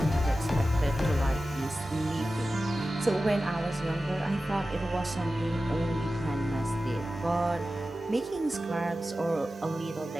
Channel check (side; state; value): both; normal; correlation 0.94